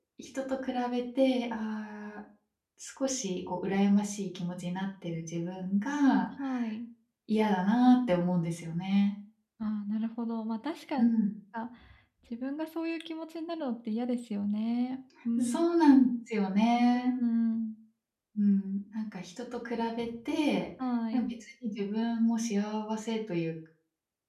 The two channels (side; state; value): both; identical; correlation 1.00